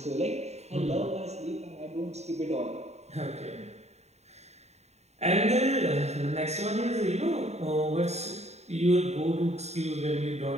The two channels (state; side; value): late; left; 0.32 ms